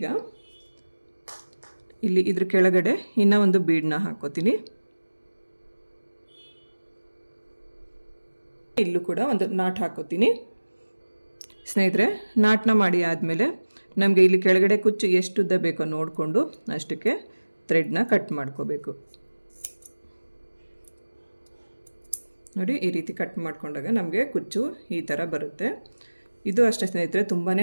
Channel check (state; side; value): inverted; both; correlation -1.00